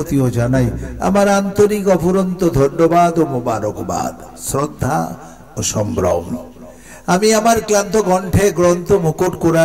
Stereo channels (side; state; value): both; identical; correlation 1.00